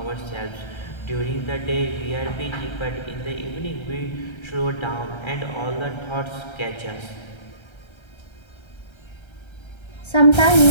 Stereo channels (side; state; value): right; late; 1.3 ms